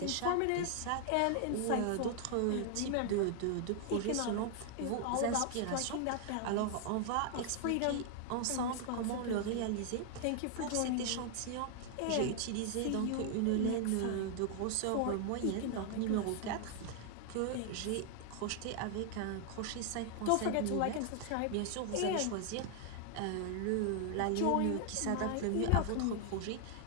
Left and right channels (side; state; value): both; different; correlation 0.00